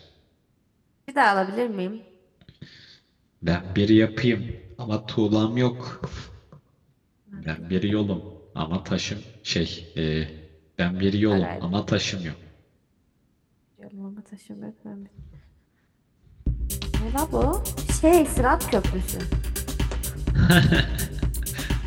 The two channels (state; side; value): identical; both; correlation 1.00